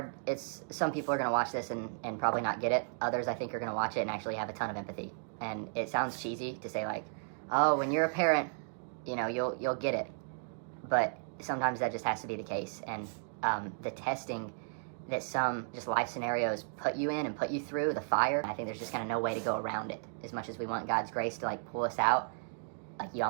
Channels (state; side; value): silent; left; digital silence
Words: Some people are going to watch this and probably not get it. Others, I think, are going to watch it and actually have a ton of empathy. And it sounds cheesy to say, like, oh, when you're a parent, you know, you'll get it. But sometimes that just has to be the case. And the testing that some just life scenarios put you in and put you through, the fire, I think there's just kind of no way to go around it. As much as we want God's grace to, like, pull us out, like, you